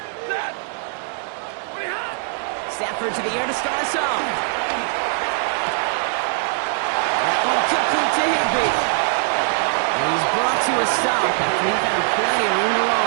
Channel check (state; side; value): silent; left; 63 dB below the other